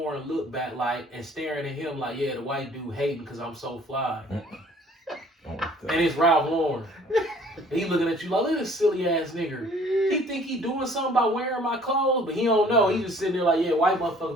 looked back like, and staring at him like, yeah, the white dude hating because I'm so fly. Oh, And it's Ralph Lauren. And he looking at you like, look at this silly ass nigga. He think he doing something by wearing my clothes, but he don't know. He just sitting there like, yeah, white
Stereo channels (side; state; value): both; normal; correlation 0.55